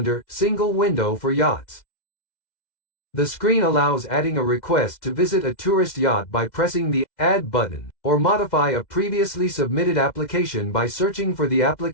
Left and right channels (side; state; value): right; late; 2.1 ms